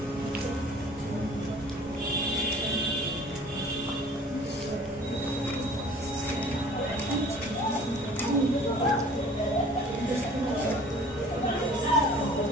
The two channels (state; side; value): normal; both; correlation 0.49